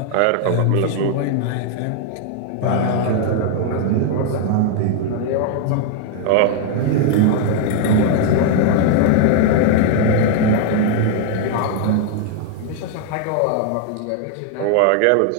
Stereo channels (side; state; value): both; different; correlation 0.00